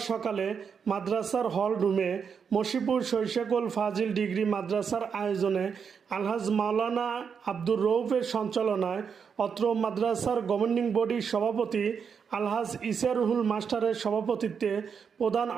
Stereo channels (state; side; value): quieter; left; 6.5 dB